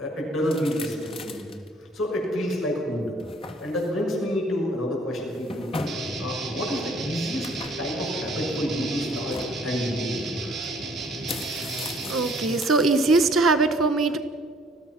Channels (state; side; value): normal; both; correlation 0.59